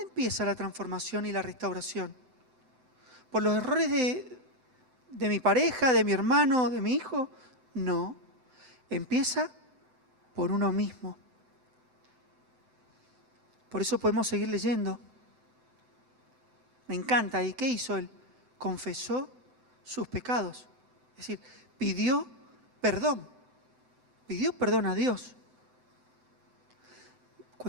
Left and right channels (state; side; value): late; left; 7.8 ms